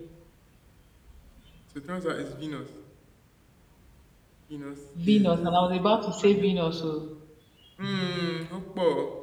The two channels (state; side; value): identical; both; correlation 1.00